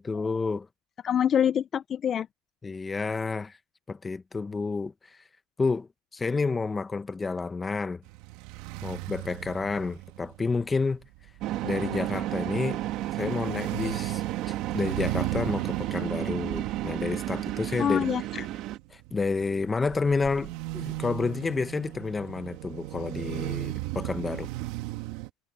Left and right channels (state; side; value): normal; both; correlation 0.71